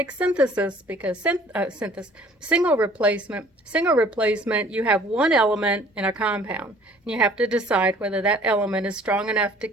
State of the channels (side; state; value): both; normal; correlation 0.53